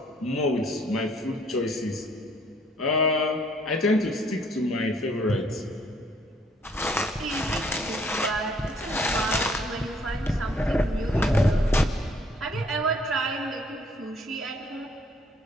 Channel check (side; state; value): both; normal; correlation 0.63